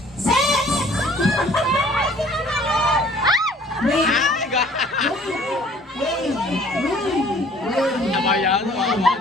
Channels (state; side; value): normal; both; correlation 0.55